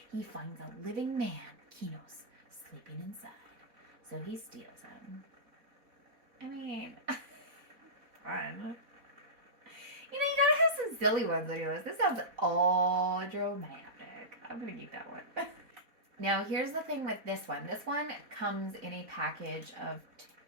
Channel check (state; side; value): late; left; 4.1 ms